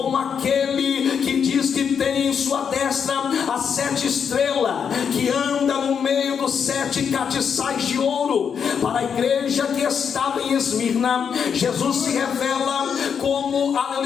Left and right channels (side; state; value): right; quieter; 7.1 dB